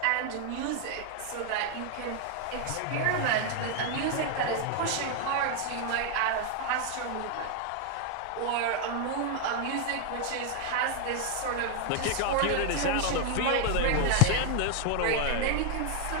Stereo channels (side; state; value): both; different; correlation 0.00